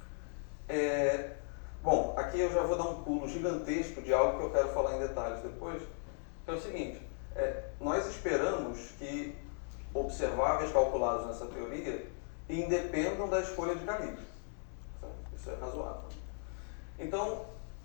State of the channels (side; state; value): right; silent; 53 dB below the other